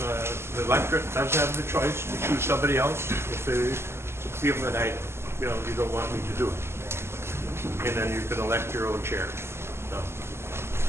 electorate does have the choice to choose somebody else, if they feel that you don't want me to do it, and then you can elect your own chair. So,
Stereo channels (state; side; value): late; left; 0.12 ms